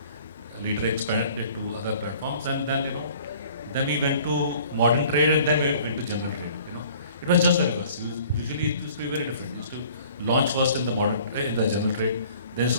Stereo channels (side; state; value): both; inverted; correlation -0.52